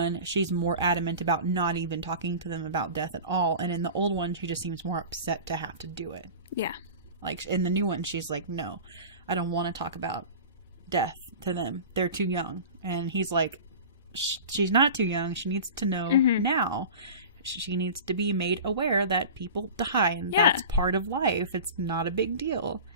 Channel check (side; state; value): both; inverted; correlation -0.35